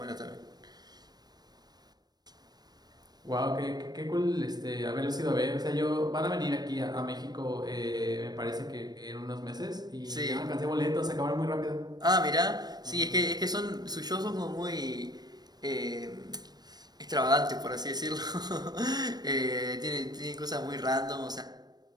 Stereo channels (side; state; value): left; late; 0.19 ms